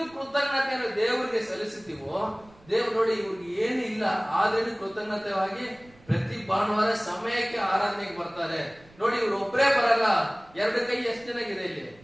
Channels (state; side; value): noise; right; rumble, 27 dB below the sound